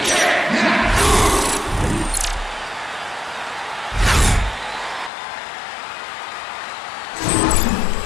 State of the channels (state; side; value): drops out; right; at 5.1 s